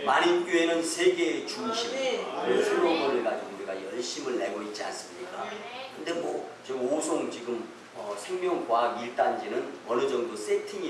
만인교회는 세계의 중심, 그런 슬로건을 가지고 우리가 열심을 내고 있지 않습니까? 근데 뭐 지금 오송 지금 생명과학 1단지는 어느 정도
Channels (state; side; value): identical; both; correlation 1.00